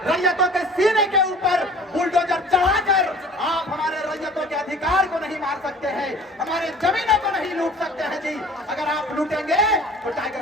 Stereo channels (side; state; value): both; normal; correlation 0.47